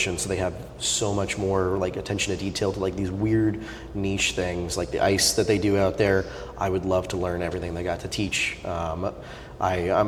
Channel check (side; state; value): both; identical; correlation 1.00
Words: so they have so much more like attention to detail to like these weird niche things, like the ice that they do out there. I would love to learn everything they got to teach.